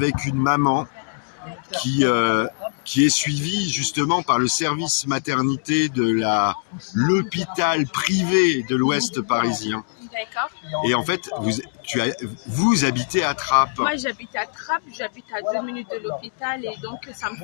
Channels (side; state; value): right; silent; digital silence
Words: une maman qui est suivi justement par le service maternité de l'hôpital privé de l'Ouest parisien. D'accord. Et en fait, vous habitez à Trappes. Moi, j'habite à Trappes, j'habite à 2 minutes de l'hôpital et donc ça me